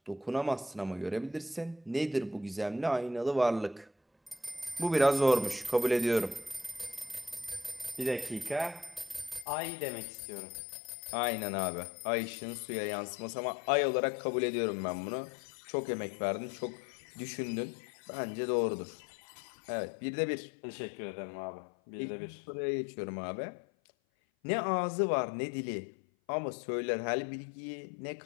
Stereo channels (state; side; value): drops out; right; at 9.5 s